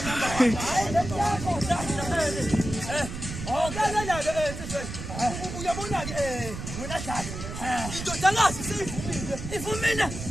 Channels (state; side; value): noise; right; rumble, 8 dB below the sound